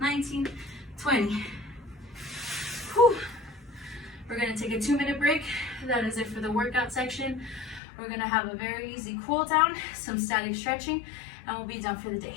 20. Whew. We're gonna take a 2-minute break. That is it for the workout section. We're gonna have a very easy cool down, some static stretching, and we'll be done for the day.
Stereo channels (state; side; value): drops out; right; at 7.8 s